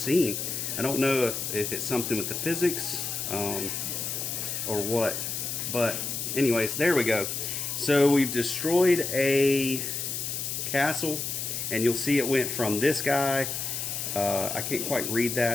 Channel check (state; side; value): noise; left; hiss, 3 dB below the sound